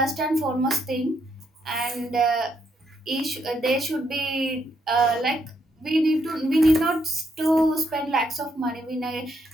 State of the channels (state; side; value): normal; both; correlation 0.76